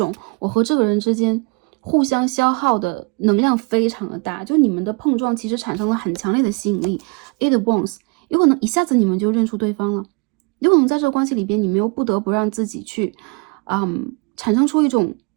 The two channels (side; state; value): left; quieter; 31.1 dB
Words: 我和这个人之间互相消耗的能量非常的大，就你们的碰撞其实产生了很强烈的吸引力。Eight of Wands， 有可能一下子你们就认出对方了，有可能在这个关系里边，你们又不得不让自己去产生出一种